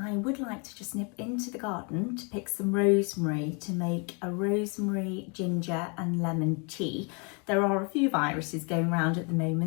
would like to just nip into the garden to pick some rosemary to make a rosemary, ginger and lemon tea. There are a few viruses going around at the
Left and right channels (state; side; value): quieter; right; 34.4 dB